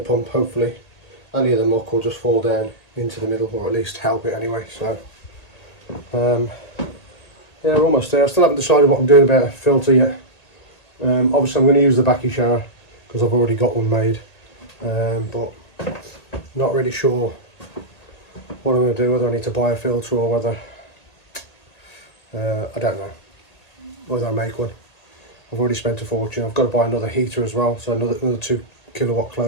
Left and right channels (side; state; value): right; late; 1.8 ms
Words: pump, hopefully any of the muck will just fall down into the middle, or at least help it anyway. So yeah, we're almost there. I still haven't decided what I'm doing about a filter yet. Obviously I'm going to use the backy shower because I've already got one made, but not really sure what I'm going to do, whether I need to buy a filter or whether I don't know whether I make one. I've already spent a fortune. I've got to buy another heater as well, so another 2 kilowatt